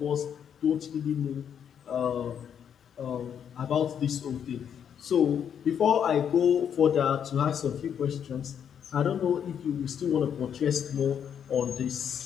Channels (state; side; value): quieter; right; 8.4 dB